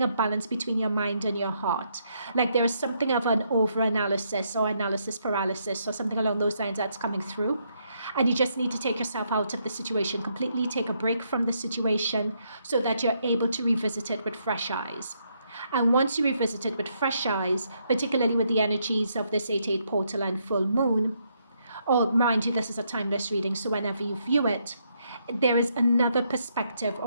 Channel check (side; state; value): both; inverted; correlation -0.75